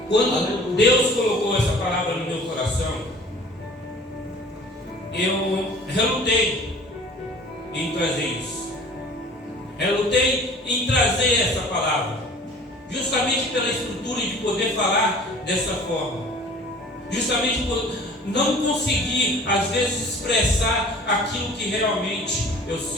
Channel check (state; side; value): normal; both; correlation 0.47